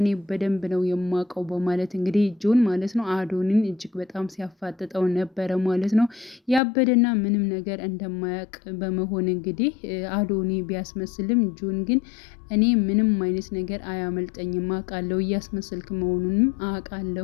በደንብ ነው የማውቀው በማለት እንግዲህ ጆን ማለት ነው አዶኒን እጅግ በጣም ሲያፋጥጠው ነበረ ማለት ነው። ያበደና ምንም ነገር እንደማያውቅ በመሆን እንግዲህ አዶኒ ቢያስመስልም ጆን ግን እኔ ምንም አይነት ነገር አያመልጠኝም አውቃለሁ፣ እያስመሰልክ መሆኑንም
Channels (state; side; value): drops out; right; at 6.6 s